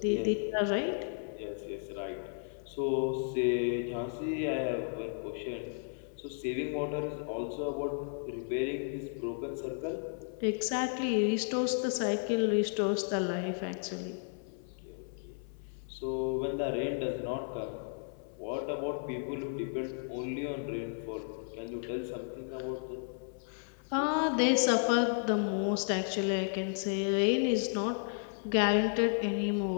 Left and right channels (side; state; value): right; silent; 55 dB below the other